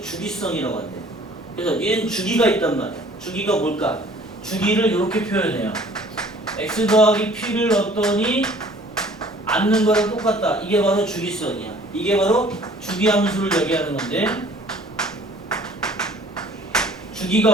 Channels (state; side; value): normal; both; correlation 0.53